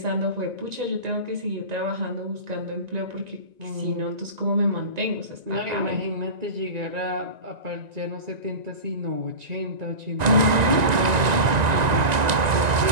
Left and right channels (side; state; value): left; late; 1.9 ms